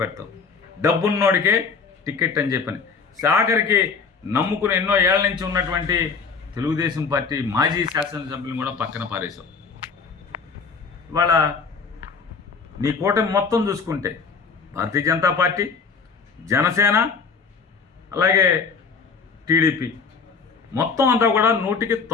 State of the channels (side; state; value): right; quieter; 5.3 dB